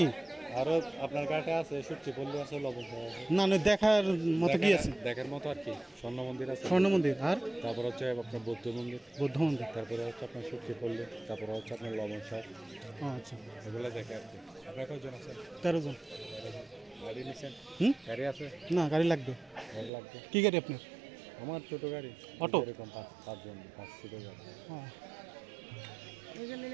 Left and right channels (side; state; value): left; drops out; at 19.9 s